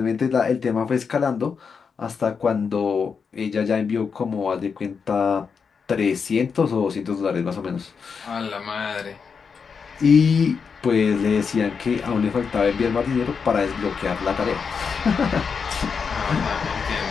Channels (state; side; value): quieter; right; 5.9 dB